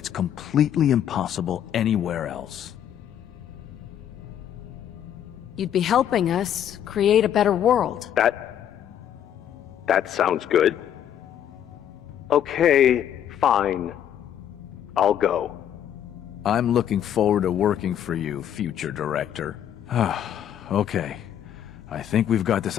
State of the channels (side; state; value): right; quieter; 10.0 dB